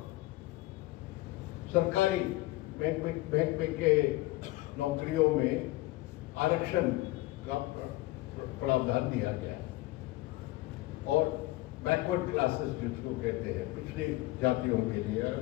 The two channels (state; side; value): quieter; right; 18.8 dB